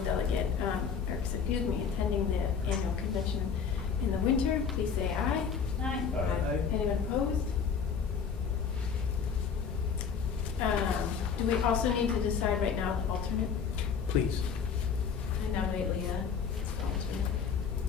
delegate, attending the annual convention in the winter, please say aye. Aye. Anyone opposed? Do we also need to decide right now the alternate? Please. I nominate Leah as the alternate.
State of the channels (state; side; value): quieter; right; 6.5 dB